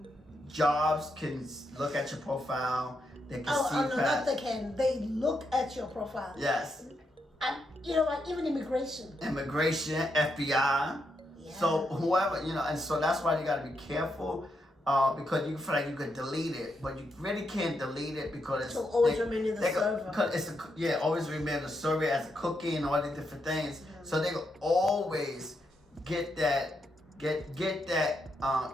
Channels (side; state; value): both; normal; correlation 0.81